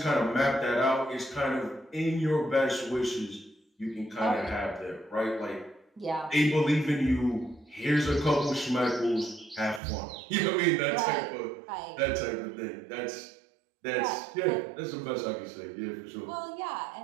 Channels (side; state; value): left; drops out; at 9.8 s